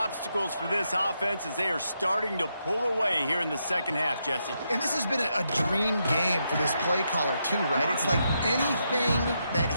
for this offense as they are starting to pull away here in the second half, Jesse. And this has been a dream game for this play caller too, right? It's like anything that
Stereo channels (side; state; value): both; inverted; correlation -0.81